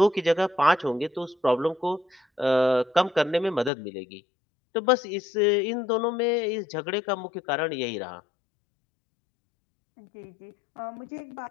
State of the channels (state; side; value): drops out; right; at 3.7 s